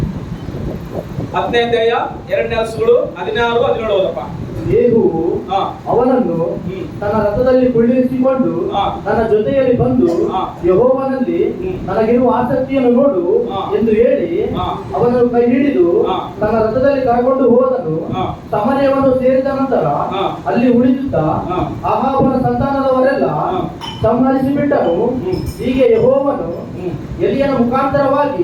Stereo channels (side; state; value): both; identical; correlation 1.00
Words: 10ನೇ ಅಧ್ಯಾಯ 2ನೇ ಅರಸುಗಳು 16, 17 ಓದಪ್ಪ. ಯೇಹುವು ಅವನನ್ನು ತನ್ನ ರಥದಲ್ಲಿ ಕುಳ್ಳಿರಿಸಿಕೊಂಡು ತನ್ನ ಜೊತೆಯಲ್ಲಿ ಬಂದು ಯೆಹೋವನಲ್ಲಿ ನನಗಿರುವ ಆಸಕ್ತಿಯನ್ನು ನೋಡು ಎಂದು ಹೇಳಿ ಅವನನ್ನು ಕೈ ಹಿಡಿದು ತನ್ನ ರಥದಲ್ಲಿ ಕರಕೊಂಡು ಹೋದನು. ಸಮರ್ಯವನ್ನು ಸೇರಿದ ನಂತರ ಅಲ್ಲಿ ಉಳಿದಿದ್ದ ಅಹಾಬನ ಸಂತಾನದವರೆಲ್ಲ ಸಂಹರಿಸಿ ಬಿಟ್ಟನು. ಹೀಗೆ ಯೆಹೋವನು ಎಲಿಯನ